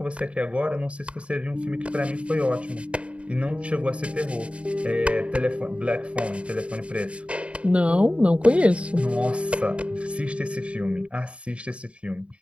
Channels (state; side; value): late; left; 0.061 ms